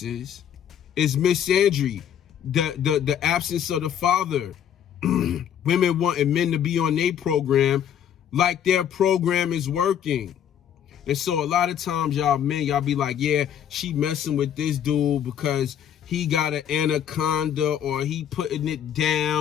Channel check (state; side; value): quieter; right; 9.4 dB